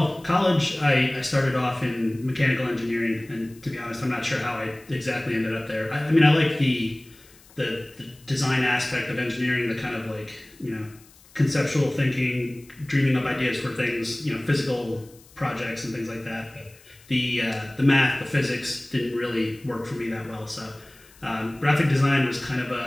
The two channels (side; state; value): left; noise; hiss, 26 dB below the sound